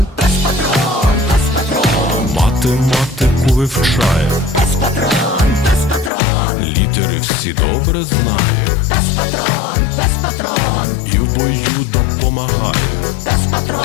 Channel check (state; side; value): drops out; right; at 6.1 s